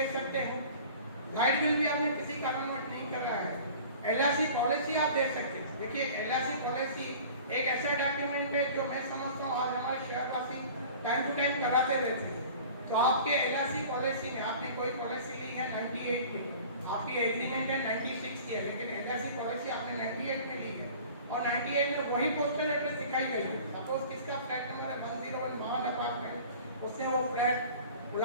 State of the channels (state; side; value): inverted; both; correlation -0.44